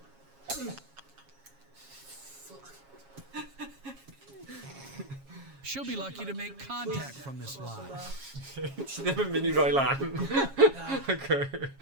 She'll be lucky to make contact from this line. Ti ddim yn mynd i roi lan. Okay.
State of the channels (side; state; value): left; late; 7.3 ms